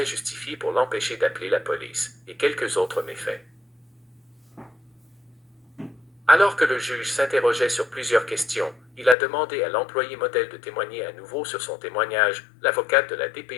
pour l'empêcher d'appeler la police, et quelques autres méfaits. Alors que le juge s'interrogeait sur plusieurs questions, il a demandé à l'employé modèle de témoigner à nouveau sur son témoignage. L'avocate de la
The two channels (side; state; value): right; drops out; at 9.2 s